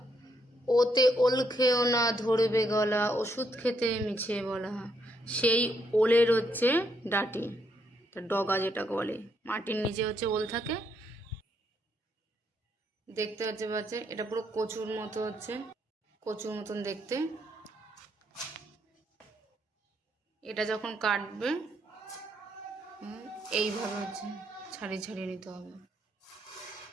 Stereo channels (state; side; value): normal; both; correlation 0.75